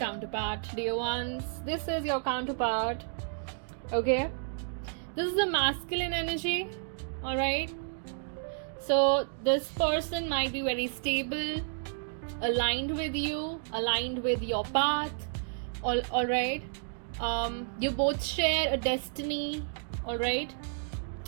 dear ones. This is your counterpart. Okay. This is a masculine energy. Alright. So this person might be very stable, aligned with you, aligned with your path. Alright. You both share a destiny. Alright.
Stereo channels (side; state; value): left; silent; digital silence